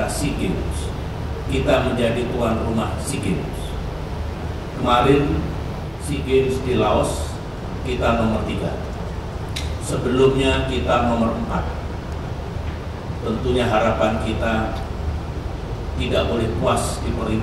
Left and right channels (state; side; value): identical; both; correlation 1.00